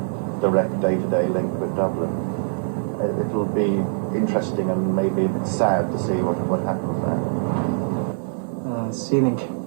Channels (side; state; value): left; silent; digital silence